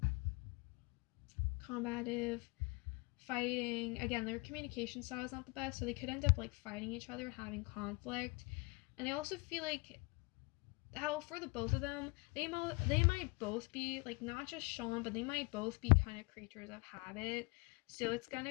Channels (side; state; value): right; quieter; 27.4 dB